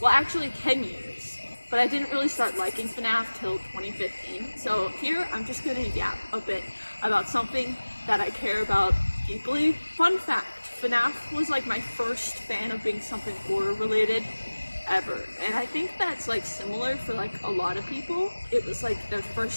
actually 10 years. But I didn't really start liking FNAF till 2015. So here, I'm just gonna yap a bit about something that I care about deeply. Fun fact, FNAF was like my first fan of being something horror related ever. And I think that's like similar for like a lot of people. It was like their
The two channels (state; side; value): inverted; both; correlation -1.00